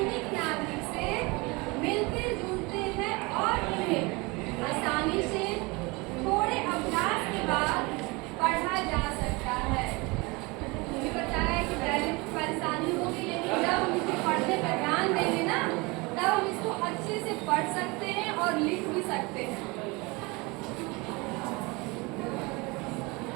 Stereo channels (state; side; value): quieter; left; 25.8 dB